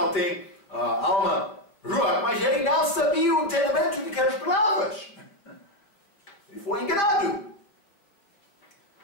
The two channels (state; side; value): late; right; 5.0 ms